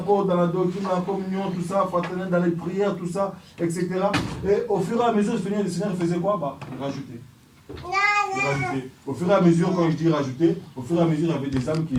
dans la doctrine, dans la communion, tout ça, fraternel, dans les prières, tout ça, etc. Et au fur et à mesure, le Seigneur faisait quoi? Il rajoutait. Au fur et à mesure, quand je dis rajouter, au fur et à mesure, il y avait des âmes qui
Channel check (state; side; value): identical; both; correlation 1.00